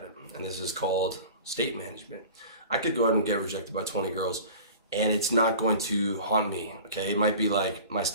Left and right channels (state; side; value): inverted; both; correlation -0.40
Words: it. And this is called state management. I could go out and get rejected by 20 girls and it's not going to haunt me, okay? It might be like my